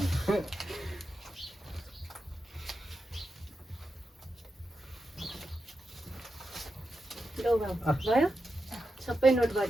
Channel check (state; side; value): normal; both; correlation 0.88